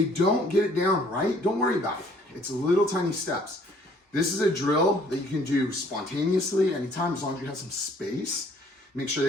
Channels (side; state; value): both; normal; correlation 0.59